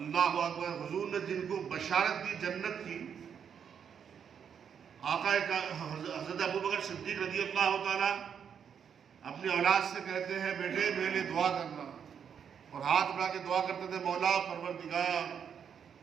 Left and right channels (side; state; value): left; quieter; 7.6 dB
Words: اکبر، حضور نے جن کو بشارت دی جنت کی، آقا حضرت ابوبکر صدیق رضی اللہ تعالیٰ اپنی اولاد سے کہتے ہیں، بیٹے میرے لیے دعا کرنا، اور ہاتھ بڑھا کے دعا کرتے تھے، مولا پروردگار